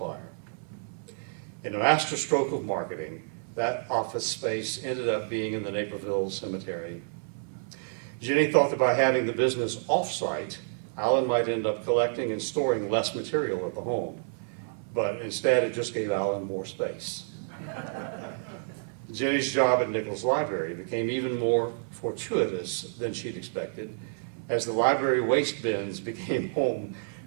In a masterstroke of marketing, that office space ended up being in the Naperville Cemetery. Jenny thought that by having the business off-site, Allan might end up collecting and storing less material at the home, but instead it just gave Allan more space. Jenny's job at Nichols Library became even more fortuitous than she'd expected, as the library waste bins became home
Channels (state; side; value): silent; left; 58 dB below the other